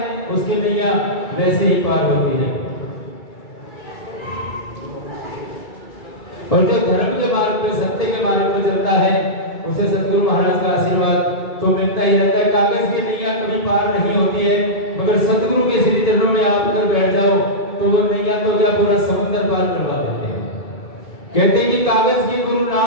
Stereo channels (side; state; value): right; late; 2.3 ms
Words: उसकी नैया वैसे ही पार होती है। और जो धर्म के मार्ग पे, सत्य के मार्ग पे चलता है उसे सतगुरु महाराज का आशीर्वाद तो मिलता ही रहता है। कागज की नैया कभी पार नहीं होती है, मगर सतगुरु के श्री चरणों में आप अगर बैठ जाओ तो वो नैया तो क्या पूरा समुद्र पार करवा देते हैं। कहते हैं कि कागज की गुरु